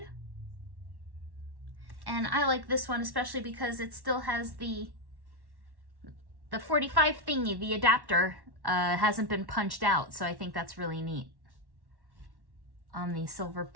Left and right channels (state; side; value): late; left; 1.1 ms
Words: And I like this one especially because it still has the 45 thingy, the adapter, hasn't been punched out, so I think that's really neat. On the Silver